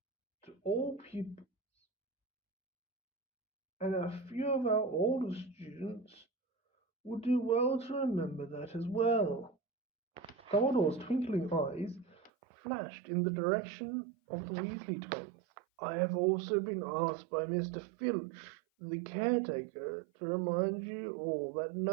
to all pupils, and a few of our older students would do well to remember that as well." Dumbledore's twinkling eyes flashed in the direction of the Weasley twins. "I have also been asked by Mr. Filch, the caretaker, to remind you all that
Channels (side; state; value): left; drops out; at 12.3 s